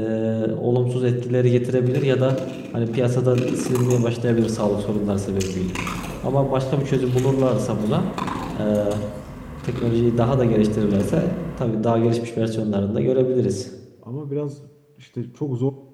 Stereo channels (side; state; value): both; identical; correlation 1.00